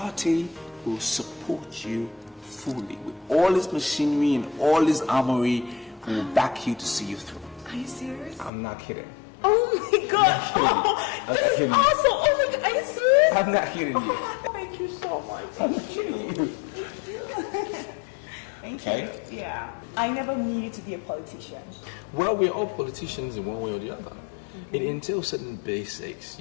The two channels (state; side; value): drops out; right; at 8.5 s